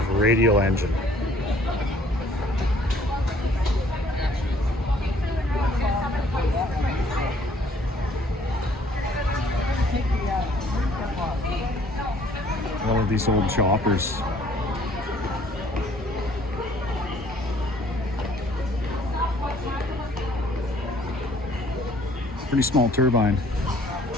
radial engine. One of these old choppers. Pretty small turbine.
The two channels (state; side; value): normal; both; correlation 0.59